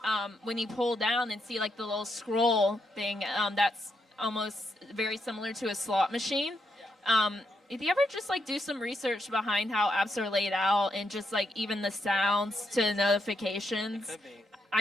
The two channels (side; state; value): both; normal; correlation 0.80